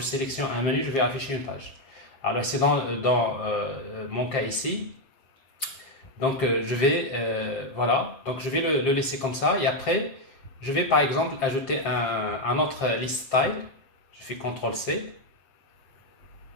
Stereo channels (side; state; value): right; late; 7.4 ms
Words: un menu, je vais afficher une page. Alors, c'est dans mon cas ici. Donc, je vais, voilà. Donc, je vais le laisser comme ça. Et après, je vais, par exemple, ajouter un autre list style. Je fais CTRL-C.